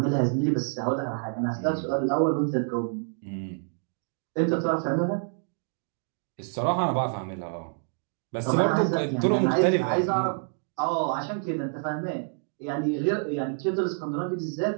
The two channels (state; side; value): silent; left; 60 dB below the other